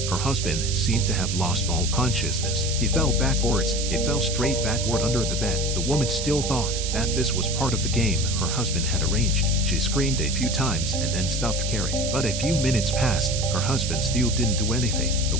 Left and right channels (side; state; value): right; noise; hiss, 4 dB below the sound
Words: Her husband seemed to have lost all consciousness. He fell backwards. He fell straight backward under the bed. The woman still thought that this was part of the game her husband had arranged. She screamed a few times and then stopped caring. But a few minutes passed. Her husband still didn't do anything. The